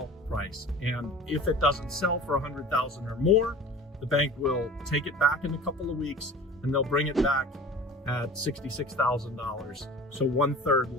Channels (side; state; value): both; normal; correlation 0.39